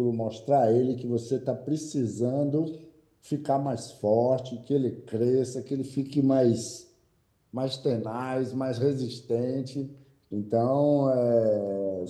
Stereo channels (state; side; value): identical; both; correlation 1.00